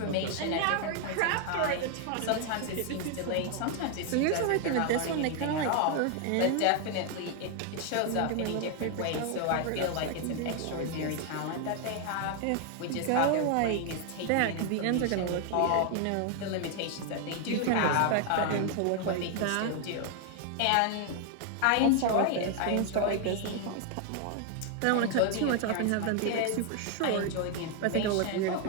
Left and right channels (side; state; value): both; different; correlation 0.00